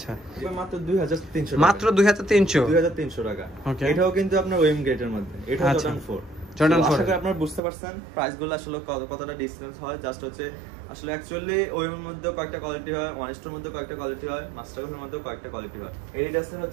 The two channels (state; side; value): drops out; left; at 7.6 s